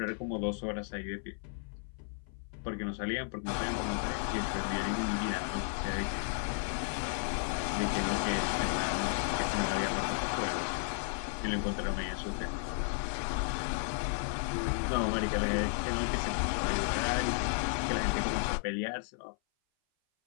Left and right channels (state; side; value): silent; right; 55 dB below the other